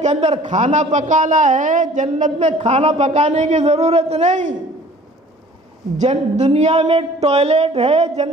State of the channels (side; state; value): both; normal; correlation 0.50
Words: کے اندر کھانا پکانا ہے، جنت میں کھانا پکانے کی ضرورت نہیں. دنیا میں ٹوائلٹ ہے،